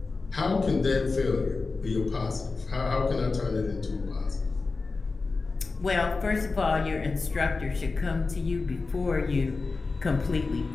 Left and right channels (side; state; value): right; quieter; 4.0 dB